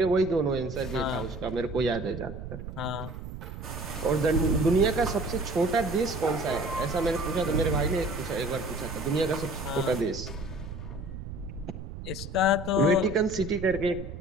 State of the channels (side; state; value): right; noise; rumble, 10 dB below the sound